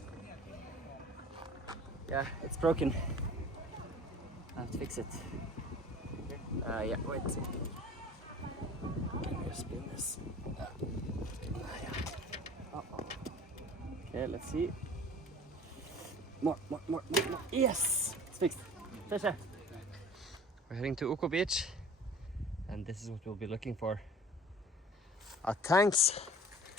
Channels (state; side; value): normal; both; correlation 0.44